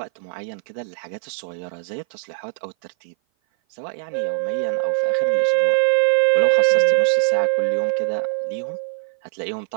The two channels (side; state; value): left; silent; 57 dB below the other